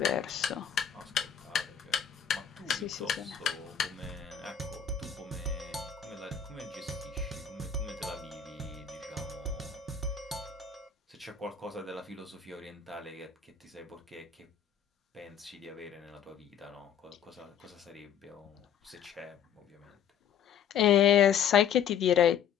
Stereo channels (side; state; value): right; quieter; 8.0 dB